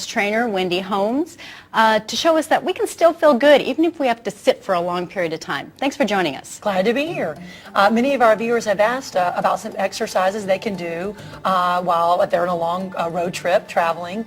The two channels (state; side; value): identical; both; correlation 1.00